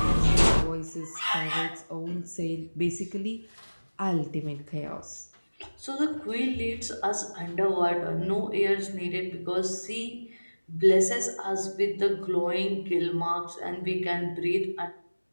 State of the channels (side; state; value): both; inverted; correlation -1.00